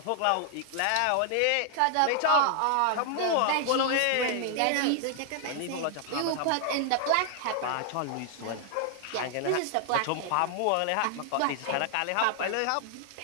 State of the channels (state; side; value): different; both; correlation 0.00